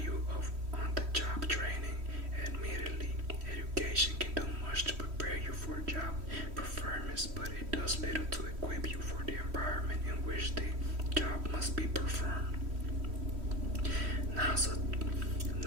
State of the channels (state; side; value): late; left; 3.1 ms